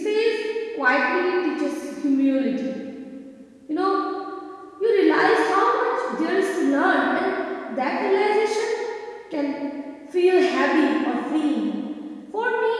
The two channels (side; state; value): both; identical; correlation 1.00